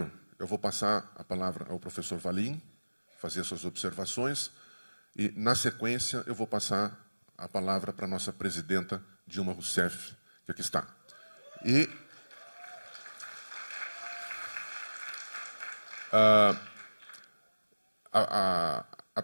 eu vou passar a palavra ao professor Valim, fazer suas observações, e, na sequência, eu vou passar a palavra para a nossa presidenta, Dilma Rousseff, que aqui está. E a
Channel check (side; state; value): both; inverted; correlation -1.00